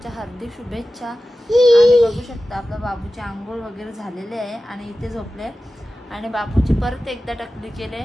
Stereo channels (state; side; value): normal; both; correlation 0.94